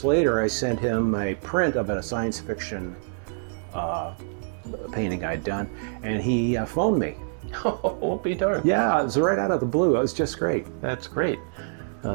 later, I sent him a print of a science fiction painting I'd done, and he phoned me. Oh, be darned. Yeah, it was right out of the blue. It was just great. That's great.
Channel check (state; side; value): silent; left; 61 dB below the other